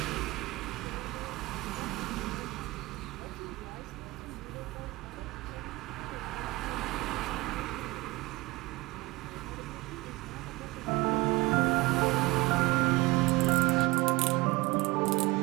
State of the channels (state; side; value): quieter; left; 21.5 dB